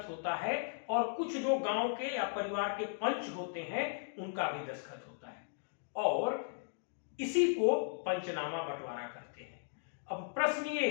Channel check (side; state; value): right; silent; digital silence